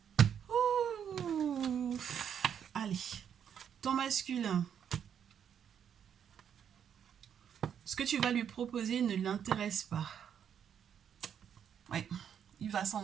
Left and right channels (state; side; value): quieter; left; 8.4 dB